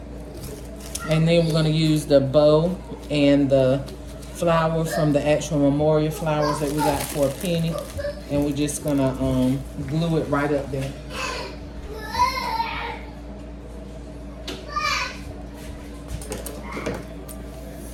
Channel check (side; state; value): both; identical; correlation 1.00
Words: And then we're going to use the bow and the flower from the actual memorial flowers that we got for a penny. And we're just going to glue it right up there.